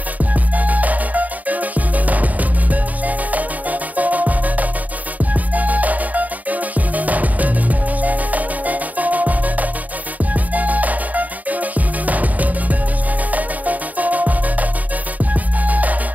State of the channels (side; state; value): left; late; 0.075 ms